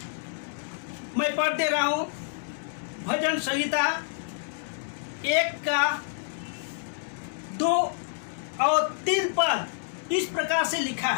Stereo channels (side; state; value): right; silent; digital silence